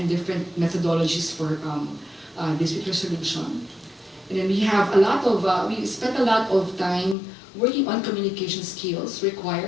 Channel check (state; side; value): drops out; right; at 7.2 s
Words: different methodologies for dispute resolution. And then we have a lot of, we spent a lot of time working on communication skills